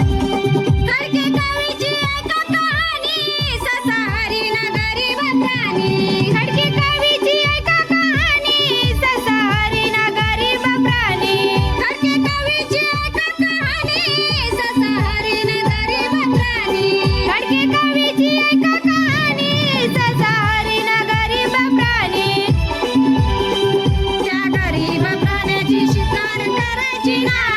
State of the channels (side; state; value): both; identical; correlation 1.00